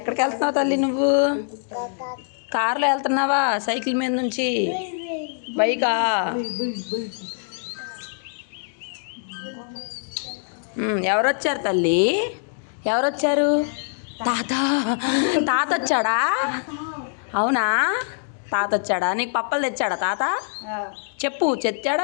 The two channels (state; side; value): silent; right; digital silence